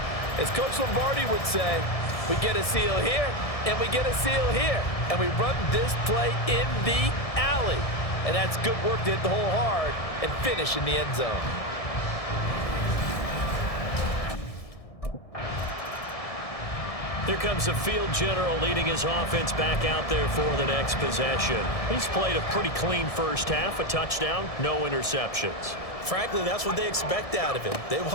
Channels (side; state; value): right; late; 1.7 ms